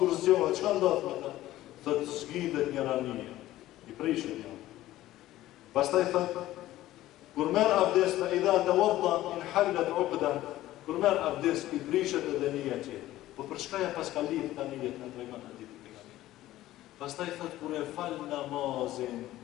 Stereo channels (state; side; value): quieter; right; 15.2 dB